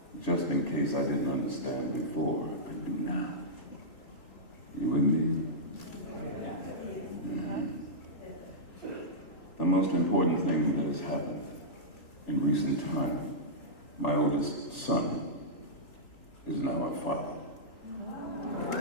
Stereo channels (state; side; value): late; right; 3.4 ms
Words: just in case I didn't understand before, I do now. You with me? Mm-hmm. The most important thing that has happened in recent time, my oldest son is now a father.